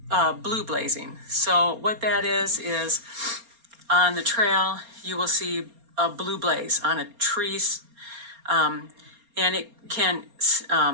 blue blazing. So what that is on the trail, you will see a blue blaze on a tree, and it can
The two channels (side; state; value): left; late; 4.3 ms